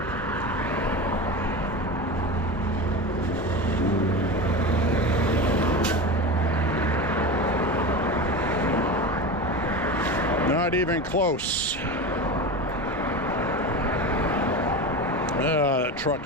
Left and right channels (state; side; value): normal; both; correlation 0.25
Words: Not even close. That truck